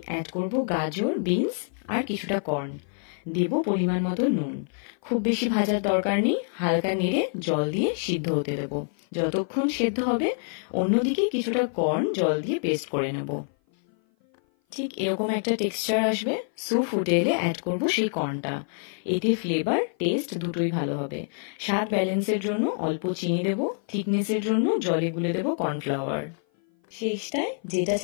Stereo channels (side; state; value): right; silent; 57 dB below the other